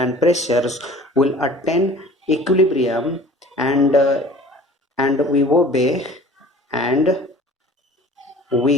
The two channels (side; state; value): both; normal; correlation 0.46